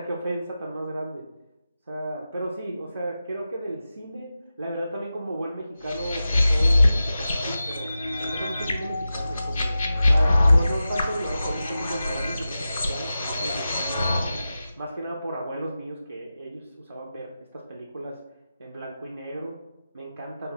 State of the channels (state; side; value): inverted; both; correlation -0.93